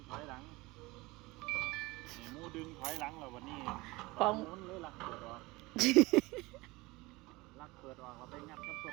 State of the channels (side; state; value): left; quieter; 22.3 dB